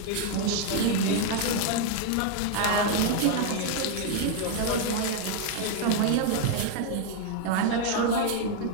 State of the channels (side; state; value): both; different; correlation 0.01